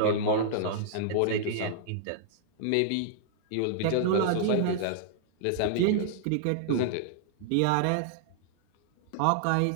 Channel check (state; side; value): different; both; correlation -0.01